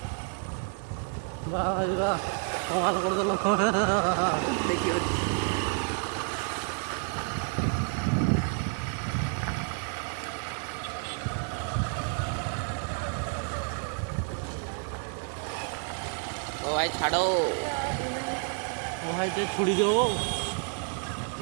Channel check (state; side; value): quieter; left; 39.2 dB